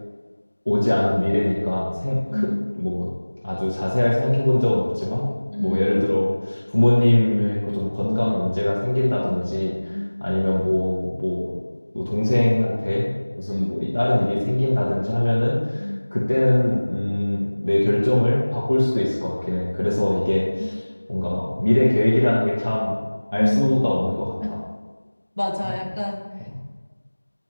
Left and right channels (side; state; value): both; inverted; correlation -1.00